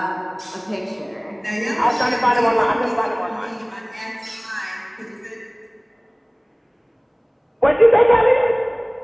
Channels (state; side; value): identical; both; correlation 1.00